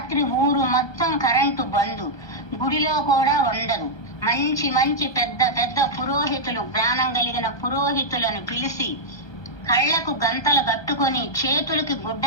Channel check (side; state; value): right; late; 1.2 ms